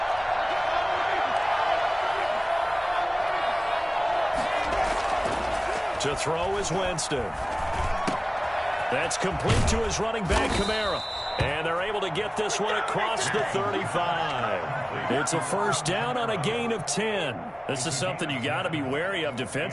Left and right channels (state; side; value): identical; both; correlation 1.00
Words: To throw is Winston. That's complete to his running back, Kamara. And they're able to get this one across the 35. It's a first down on a gain of 10. This is something you got to be wary of